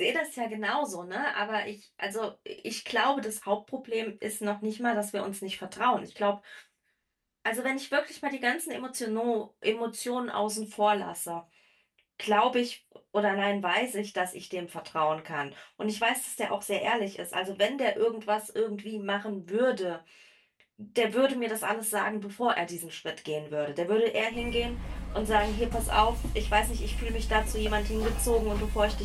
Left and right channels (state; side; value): identical; both; correlation 1.00